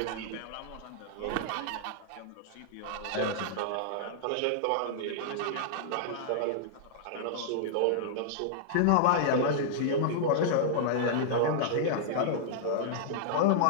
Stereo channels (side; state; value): both; different; correlation -0.02